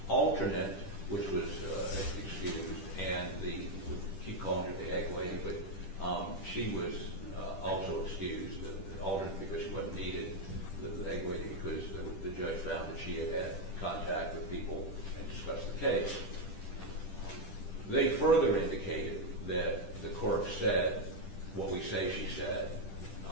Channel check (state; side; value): late; right; 10 ms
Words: alternate, which was excused, and we keep calling her the egg lady, but she was also excused, the alternate because she wasn't needed, the egg lady because the judge found that she had contact with people and discussed the case. They further indicated that the court said what we say she said,